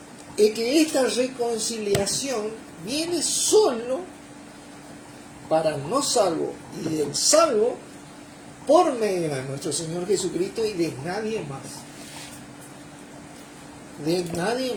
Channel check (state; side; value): identical; both; correlation 1.00